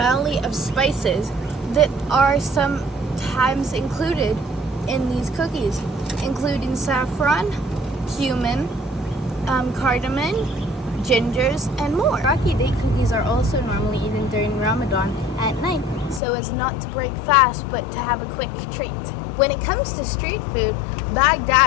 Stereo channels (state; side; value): drops out; right; at 16.2 s